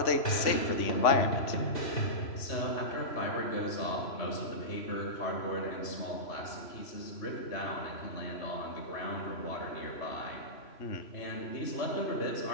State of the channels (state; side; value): late; right; 3.0 ms